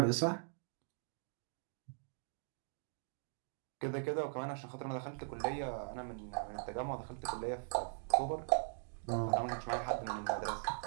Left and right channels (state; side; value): silent; left; digital silence